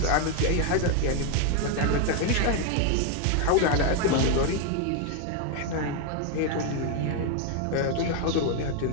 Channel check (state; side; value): different; both; correlation 0.01